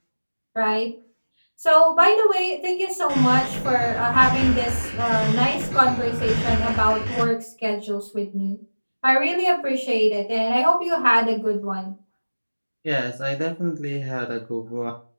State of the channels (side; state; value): both; inverted; correlation -1.00